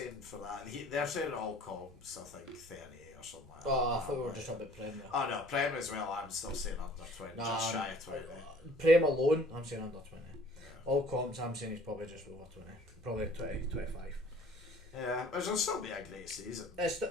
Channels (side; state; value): left; noise; hum, 27 dB below the sound